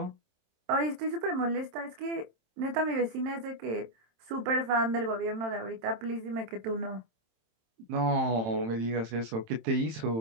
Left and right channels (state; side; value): late; left; 27 ms